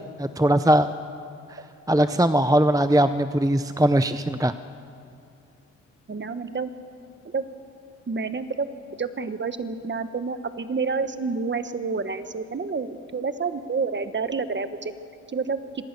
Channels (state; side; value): normal; both; correlation 0.64